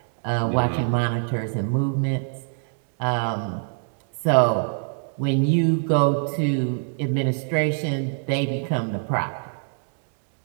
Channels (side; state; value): left; silent; digital silence